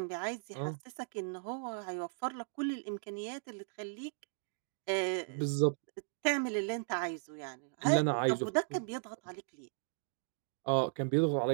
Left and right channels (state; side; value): silent; left; digital silence